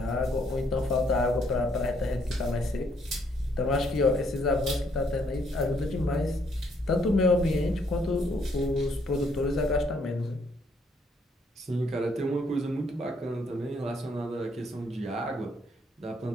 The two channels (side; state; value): both; normal; correlation 0.69